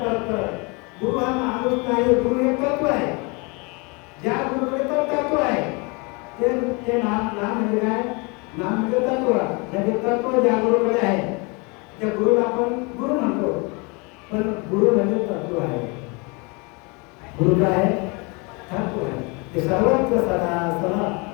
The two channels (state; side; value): quieter; right; 29.8 dB